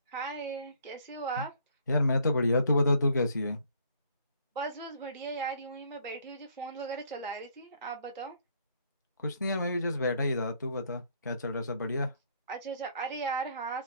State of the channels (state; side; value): inverted; both; correlation -0.64